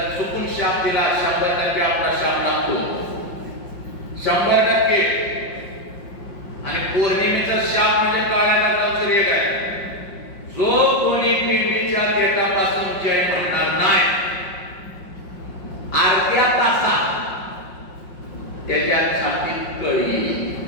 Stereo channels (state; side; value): late; right; 5.6 ms